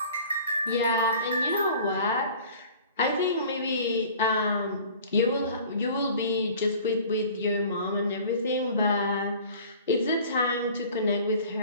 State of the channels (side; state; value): both; inverted; correlation -0.47